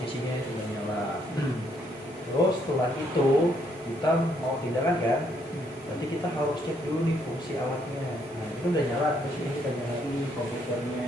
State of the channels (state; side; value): normal; both; correlation 0.71